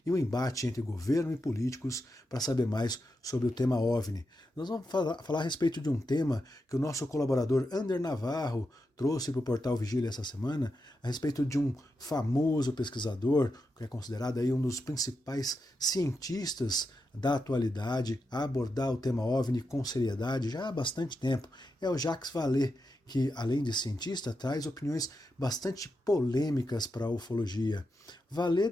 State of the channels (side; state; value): both; normal; correlation 0.87